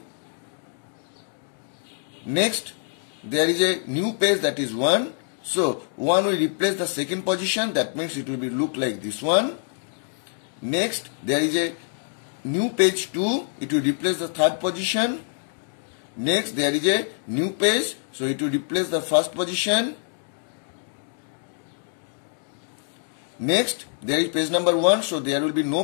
Next there is a new page that is 1, so 1 will replace the second position, that means it will be look like this one. Next there is a new page 2, it will replace the third position. Next there is a new page, so it will replace the first position. Next there is page number 1, so there will be no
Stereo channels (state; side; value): silent; right; digital silence